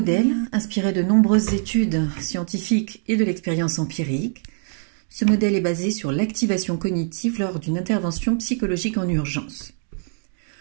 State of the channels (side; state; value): left; silent; 61 dB below the other